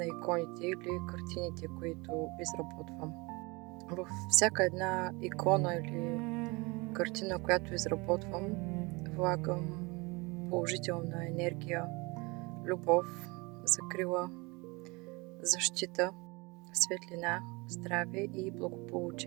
иконите или картините, които изработвам. Във всяка една икона или картина, която изработвам, влагам положителна енергия, любов, закрила, защита, светлина, здраве и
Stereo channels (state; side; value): quieter; left; 26.2 dB